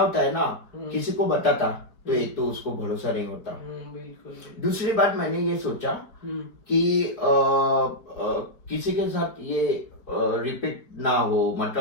है ना, किसी को बताता तो एक तो उसको भरोसा नहीं होता। बिल्कुल। दूसरी बात मैंने ये सोचा कि किसी के साथ ये रिपीट ना हो,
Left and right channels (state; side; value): late; right; 4.7 ms